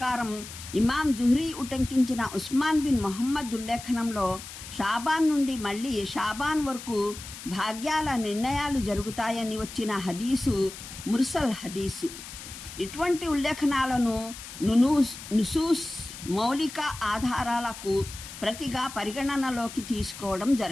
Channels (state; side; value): noise; left; hiss, 13 dB below the sound